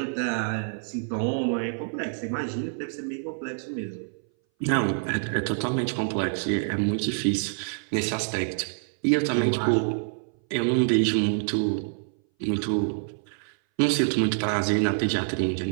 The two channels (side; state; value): left; silent; 59 dB below the other